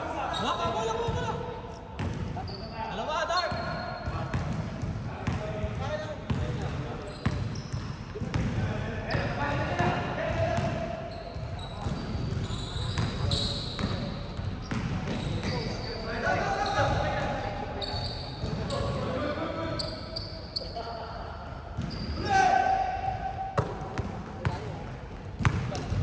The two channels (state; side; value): identical; both; correlation 1.00